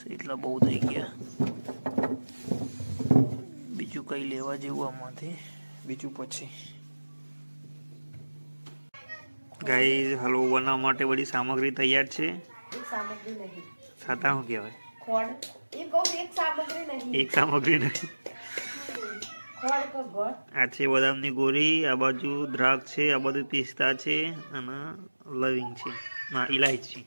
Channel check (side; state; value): both; inverted; correlation -1.00